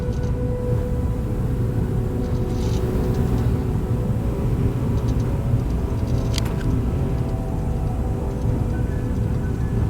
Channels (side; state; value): both; identical; correlation 1.00